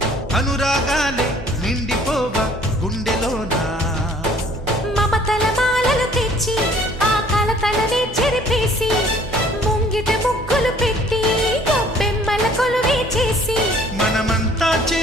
అనురాగాలే నిండిపోవా గుండెలోనా మమతల మాలలు తెచ్చి ఆ కలతలనే చెరిపేసి ముంగిట ముగ్గులు పెట్టి గొప్పెమ్మల కొలువే చేసి మనమంతా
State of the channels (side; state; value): both; normal; correlation 0.56